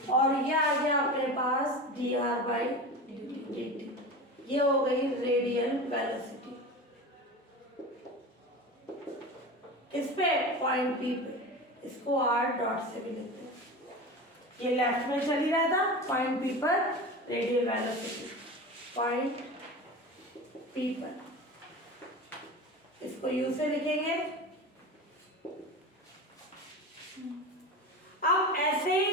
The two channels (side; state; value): both; normal; correlation 0.29